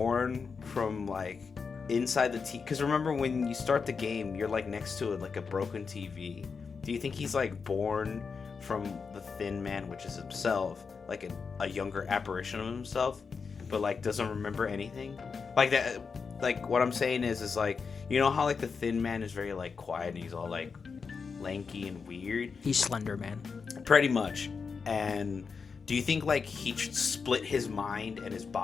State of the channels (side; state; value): right; quieter; 5.3 dB